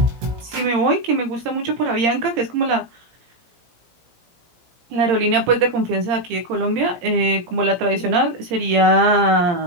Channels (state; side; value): late; left; 17 ms